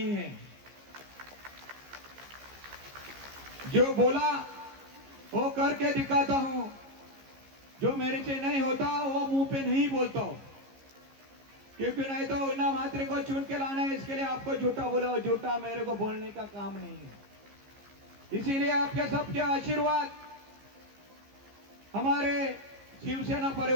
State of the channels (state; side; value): late; left; 15 ms